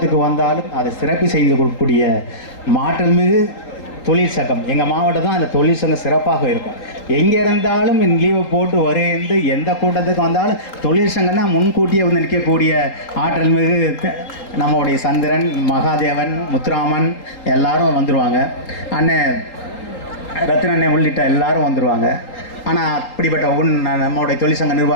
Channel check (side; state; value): right; late; 3.8 ms